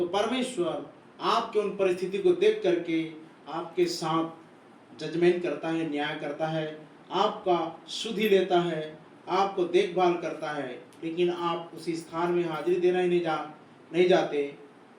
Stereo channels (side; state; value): both; identical; correlation 1.00